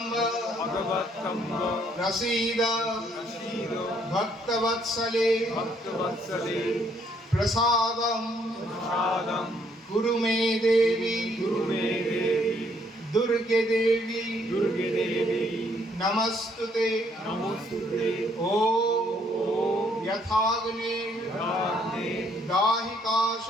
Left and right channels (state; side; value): normal; both; correlation 0.68